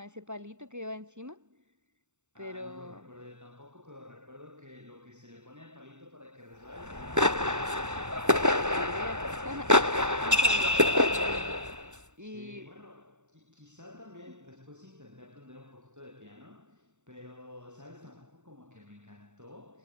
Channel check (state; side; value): late; left; 0.84 ms